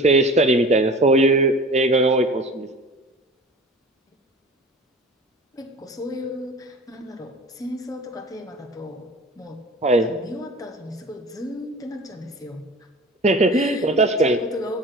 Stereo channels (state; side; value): normal; both; correlation 0.40